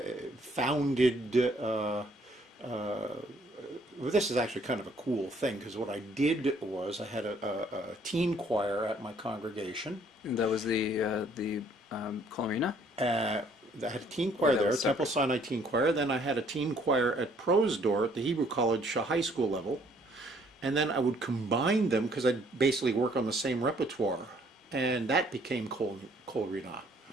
founded, well, this is actually kind of a cool thing, because what I did was I had a teen choir at my congregation. And that was the Colorina? I had a teen choir there, Temple Sinai Teen Choir. Then I had a teen choir at Prosdor at the Hebrew College high school level. And then I would combine them because I'd basically work on the same repertoire. And that became Kol Rina.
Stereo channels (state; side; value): normal; both; correlation 0.62